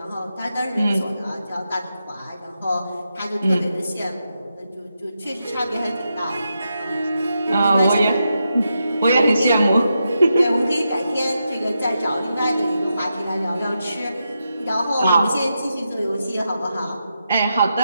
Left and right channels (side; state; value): both; inverted; correlation -0.86